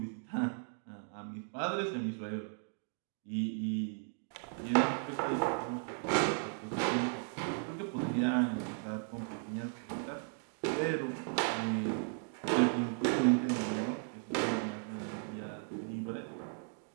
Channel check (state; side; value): silent; left; 54 dB below the other